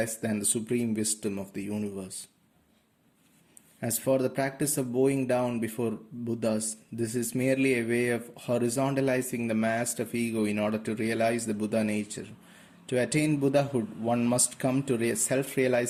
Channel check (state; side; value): identical; both; correlation 1.00